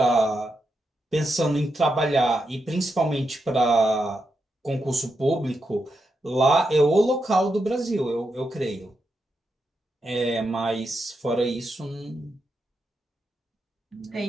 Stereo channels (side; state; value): both; normal; correlation 0.85